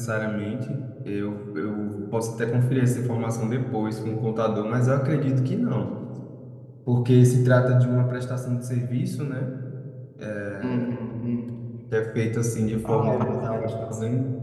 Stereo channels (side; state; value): both; identical; correlation 1.00